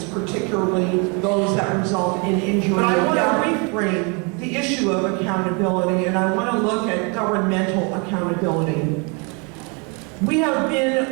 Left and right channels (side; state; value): left; quieter; 33.0 dB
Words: particularly those that result in injury. But I want to reframe the issue of accountability, and I want to look at governmental accountability. We have